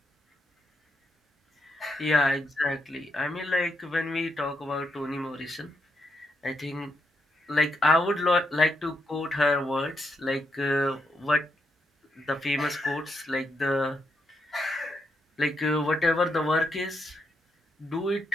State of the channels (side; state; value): both; normal; correlation 0.80